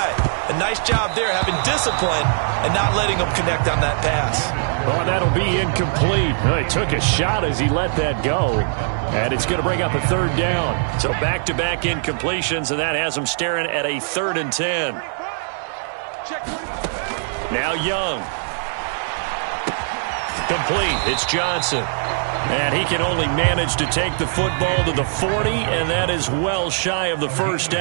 A nice job there having discipline and not letting them connect on that pass. Well, that'll be incomplete. He took a shot as he let that go. And it's going to bring up a 3rd down. So back-to-back incompletions, and that has them staring at a 3rd and 10. Now Young. Complete. It's Johnson. And he can only manage to take the football to the 40, and that is well shy of the 1st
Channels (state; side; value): silent; left; 65 dB below the other